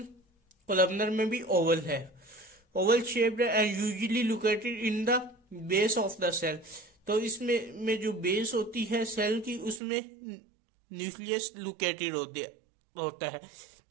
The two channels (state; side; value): drops out; left; at 9.8 s